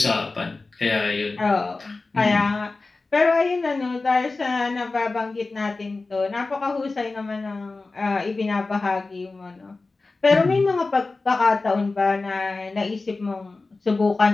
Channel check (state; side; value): quieter; right; 3.6 dB